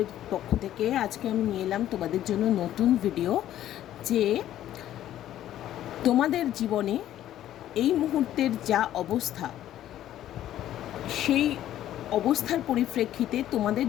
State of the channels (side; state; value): right; quieter; 12.4 dB